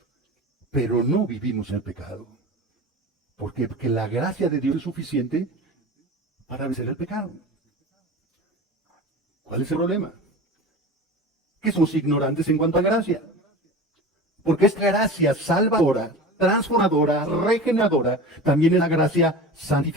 pero no vivimos el pecado. ¿Por qué? Porque la gracia de Dios es suficiente para vencer el pecado. ¿Cuál es el problema? Que somos ignorantes en cuanto a gracia. Porque esta gracia salvadora, transformadora, regeneradora, también es la gracia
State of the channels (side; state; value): both; normal; correlation 0.33